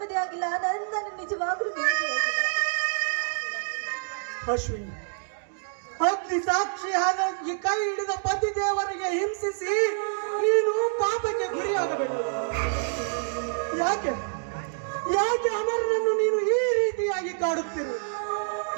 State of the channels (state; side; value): silent; left; digital silence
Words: ಆಗಿಲ್ಲ. ನನ್ನ ನಿಜವಾಗ್ಲೂ ನೆಮ್ಮದಿಯಾಗಿಲ್ಲ ಅಶ್ವಿನಿ. ಅಗ್ನಿ ಸಾಕ್ಷಿಯಾದ ಈ ಕೈ ಹಿಡಿದ ಪತಿ ದೇವರಿಗೆ ಹಿಂಸಿಸಿ ನೀನು ಪಾಪಕ್ಕೆ ಗುರಿಯಾಗಬೇಕು. ಯಾಕೆ ಯಾಕೆ ಅಮರನನ್ನು ನೀನು ಈ ರೀತಿಯಾಗಿ ಕಾಡುತ್ತಿರು?